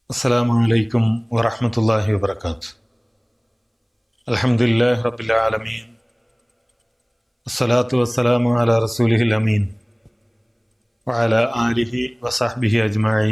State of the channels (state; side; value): identical; both; correlation 1.00